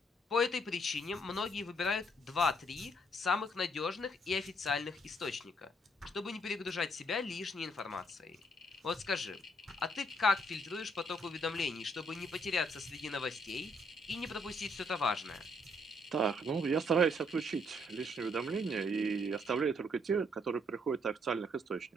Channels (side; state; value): both; normal; correlation 0.70